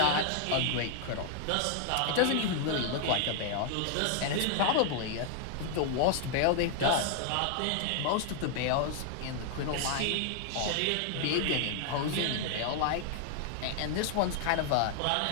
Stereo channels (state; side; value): different; both; correlation 0.00